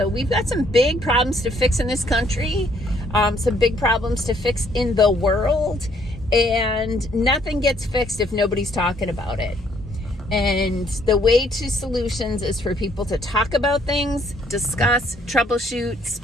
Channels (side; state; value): both; normal; correlation 0.66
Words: we've got some big problems to fix in this country, some big problems to fix in the world, and nothing gets fixed if nobody's talking about it. And the way to solutions is for people to talk about things, discuss, troubleshoot,